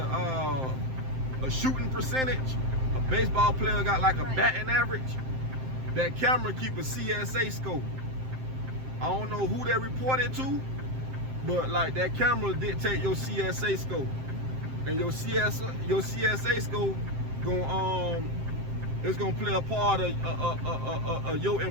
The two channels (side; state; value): left; late; 7.7 ms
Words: shooting percentage, a baseball player got like a batting average. That camera keep a CSA score. I don't know who they reported to, but like that camera dictate your CSA score, and your CSA score it's gonna play a part of your